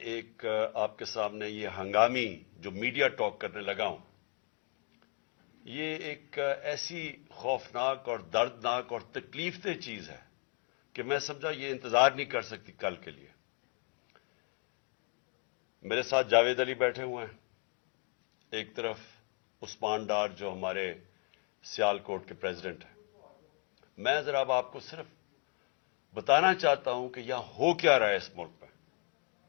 ایک آپ کے سامنے یہ ہنگامی جو میڈیا ٹاک کرنے لگا ہوں، یہ ایک ایسی خوفناک اور دردناک اور تکلیف دہ چیز ہے کہ میں سمجھا یہ انتظار نہیں کر سکتی کل کے لیے۔ میرے ساتھ جاوید علی بیٹھے ہوئے ہیں، ایک طرف عثمان ڈار جو ہمارے سیال کوٹ کے پریزیڈنٹ ہیں۔ میں ذرا اب آپ کو صرف بتانا چاہتا ہوں کہ یہاں ہو کیا رہا ہے اس ملک میں۔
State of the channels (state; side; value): quieter; right; 38.1 dB